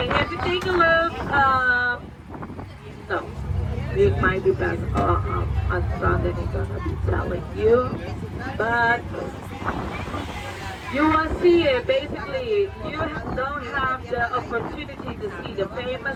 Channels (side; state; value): both; identical; correlation 1.00